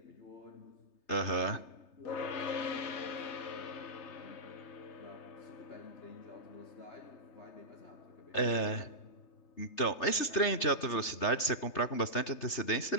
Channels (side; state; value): right; late; 3.3 ms